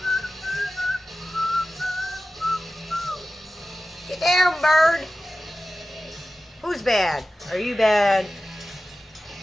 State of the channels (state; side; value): normal; both; correlation 0.94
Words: Get down, bird. Who's bad? Are you bad?